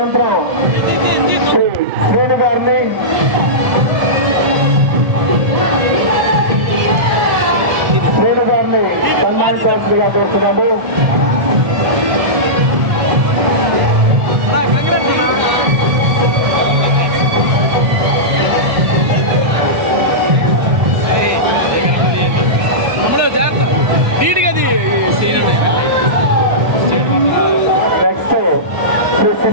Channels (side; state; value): left; late; 1.7 ms